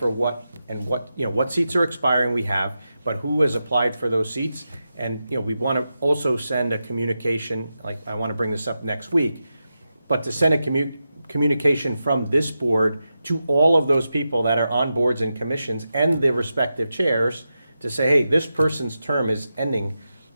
what and what seats are expiring we have, but who has applied for those seats. And, we want to also send a communication, like I want to bring this up next week, but to send a communication from this board to all of those people that are on boards and commissions and their respective chairs to say, hey, this person's term is ending.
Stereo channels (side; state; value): both; inverted; correlation -0.89